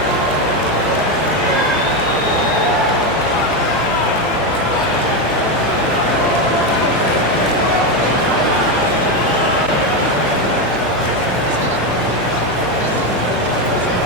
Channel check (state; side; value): noise; left; hum, 18 dB below the sound